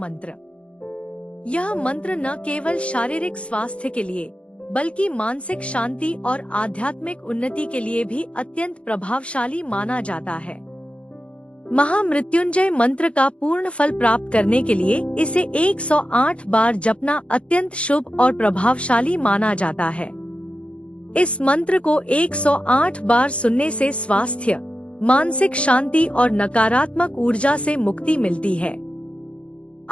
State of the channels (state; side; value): late; right; 0.060 ms